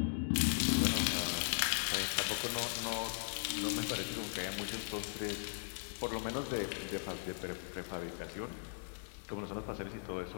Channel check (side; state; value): right; silent; digital silence